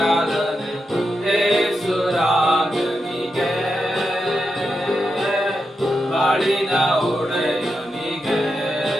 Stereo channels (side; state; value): both; normal; correlation 0.87